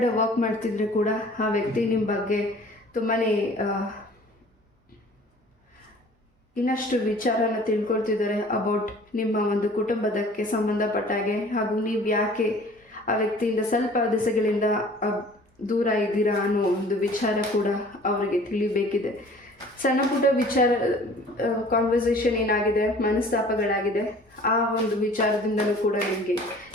ವರ್ಕ್ ಮಾಡ್ತಿದ್ರೆ ಕೂಡ ಆ ವ್ಯಕ್ತಿ ನಿಮ್ಮ ಬಗ್ಗೆ ತುಂಬಾ ಇನ್ನಷ್ಟು ವಿಚಾರನ ತಿಳ್ಕೊಳ್ತಿದ್ದಾರೆ ಅಬೌಟ್ ನಿಮ್ಮ ಒಂದು ಕುಟುಂಬದಕ್ಕೆ ಸಂಬಂಧಪಟ್ಟಾಗೆ. ಹಾಗೂ ನೀವು ಯಾಕೆ ಆ ವ್ಯಕ್ತಿಯಿಂದ ಸ್ವಲ್ಪ ದಿಸೆಗಳಿಂದ ದೂರ ಇದ್ದೀರಾ ಅನ್ನೋ ಒಂದು ವಿಚಾರ ಕೂಡ ಅವರಿಗೆ ತಿಳಿಬೇಕಿದೆ. ಸಣ್ಣ ಪುಟ್ಟ ವಿಚಾರ ಕಾನ್ವರ್ಸೇಷನ್ ಏನಾಗಿದೆ, ಮನಸ್ತಾಪಗಳಾಗಿದೆ, ಆ ಒಂದು ವಿಚಾರದಿಂದಲೂ ಕೂಡ ನಿಮಗೆ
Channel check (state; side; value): normal; both; correlation 0.49